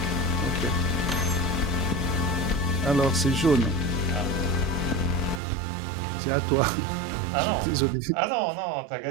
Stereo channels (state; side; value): drops out; left; at 5.4 s